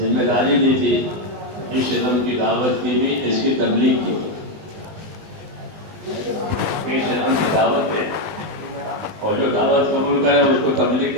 داری دی تھی اس علم کی دعوت کی بھی، اس کی تبلیغ کی بھی۔ اس علم کی دعوت ہے، اور جو دعوت قبول کرے اس کو تبلیغ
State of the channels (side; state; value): left; late; 19 ms